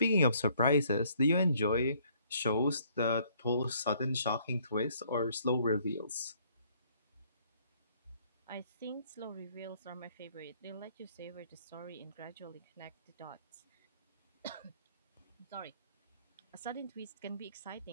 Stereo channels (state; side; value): inverted; both; correlation -0.63